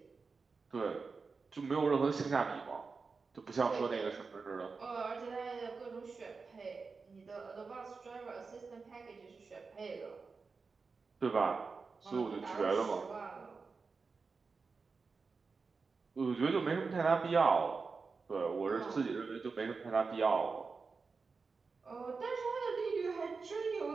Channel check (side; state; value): left; quieter; 4.6 dB